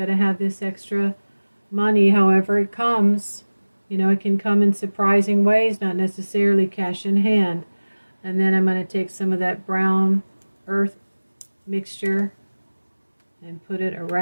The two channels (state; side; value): inverted; both; correlation -1.00